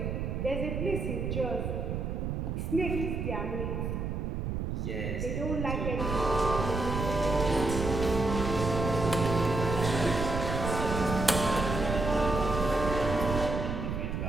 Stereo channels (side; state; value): right; noise; rumble, 2 dB below the sound